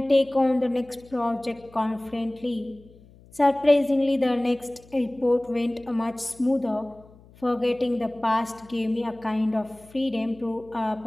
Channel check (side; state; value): left; noise; hum, 25 dB below the sound